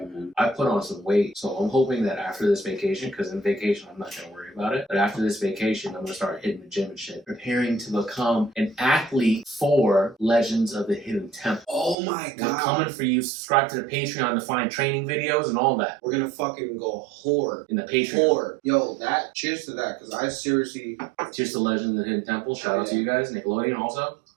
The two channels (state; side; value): drops out; left; at 12.0 s